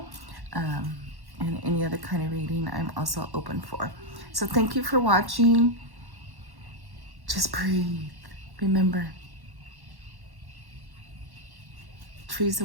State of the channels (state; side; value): late; left; 1.1 ms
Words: and any other kind of reading I'm also open for. So thank you for watching. Just breathe. Remember, trees